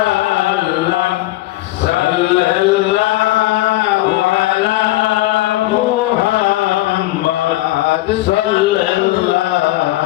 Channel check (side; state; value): right; quieter; 17.4 dB